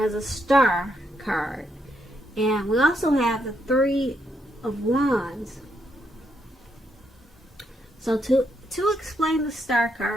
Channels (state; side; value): normal; both; correlation 0.78